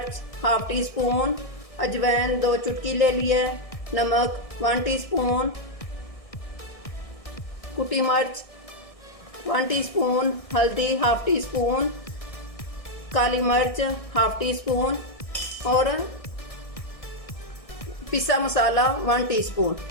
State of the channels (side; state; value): right; late; 1.6 ms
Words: 1/2 टीस्पून, अजवाइन 2 चुटकी ले लिए, नमक 1 टीस्पून, कुटी मिर्च 1 टीस्पून, हल्दी 1/2 टीस्पून, काली मिर्च 1/2 टीस्पून और पिसा मसाला 1 टीस्पून।